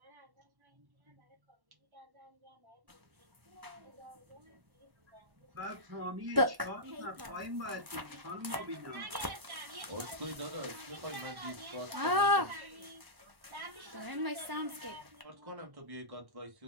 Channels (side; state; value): left; late; 1.1 ms